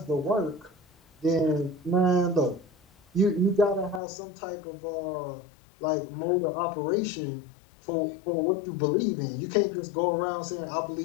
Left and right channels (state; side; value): drops out; right; at 4.0 s